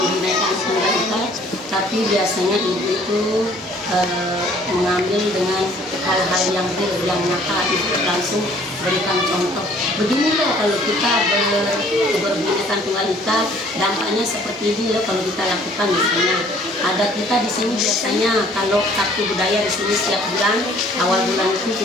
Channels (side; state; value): both; normal; correlation 0.57